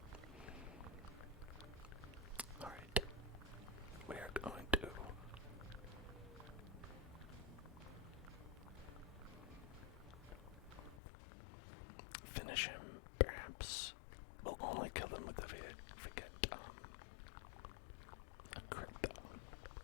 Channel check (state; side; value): drops out; right; at 11.0 s